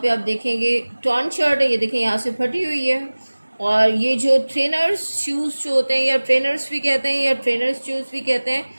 पे आप देखेंगे टॉर्न शर्ट है, ये देखें यहाँ से फटी हुई है। और ये जो ट्रेनर्स शूज़ जो होते हैं, या ट्रेनर्स भी कहते हैं या ट्रेनर्स शूज़ भी कहते हैं,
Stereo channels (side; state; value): both; inverted; correlation -1.00